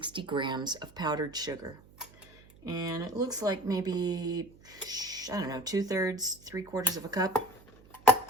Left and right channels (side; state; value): right; noise; hum, 24 dB below the sound